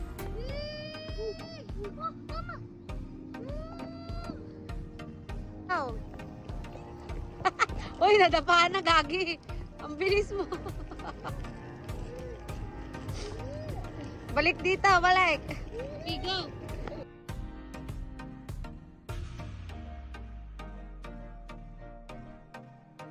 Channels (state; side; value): identical; both; correlation 1.00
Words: Oh. Uy, nadapaan na, gagi. Ang bilis mo. Balik dito, balik. Okay, go.